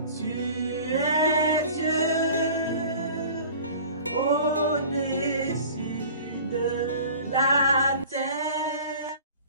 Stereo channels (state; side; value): inverted; both; correlation -0.44